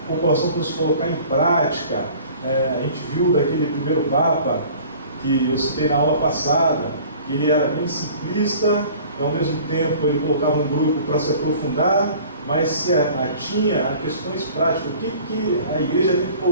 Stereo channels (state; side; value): inverted; both; correlation -0.47